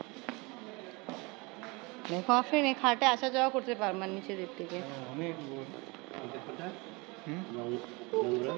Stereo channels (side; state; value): left; quieter; 26.8 dB